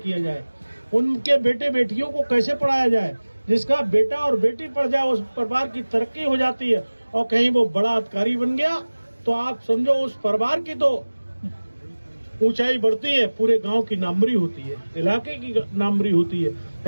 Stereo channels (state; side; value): inverted; both; correlation -1.00